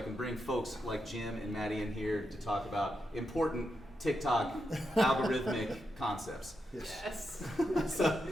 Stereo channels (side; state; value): both; normal; correlation 0.85